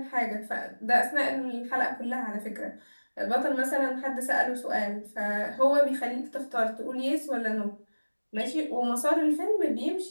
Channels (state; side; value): inverted; both; correlation -1.00